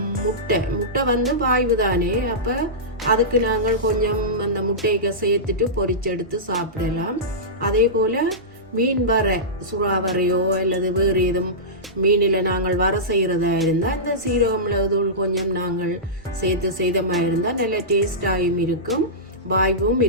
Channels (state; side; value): normal; both; correlation -0.16